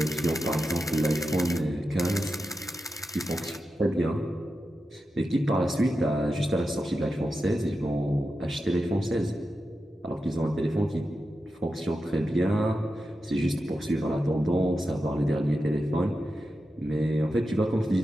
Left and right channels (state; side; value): normal; both; correlation 0.90